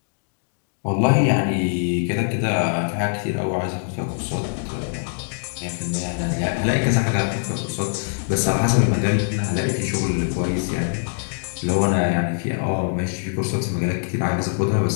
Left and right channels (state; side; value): silent; right; digital silence